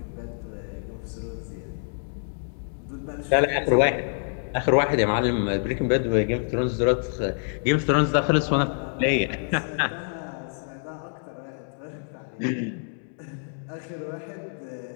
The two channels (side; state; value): right; silent; digital silence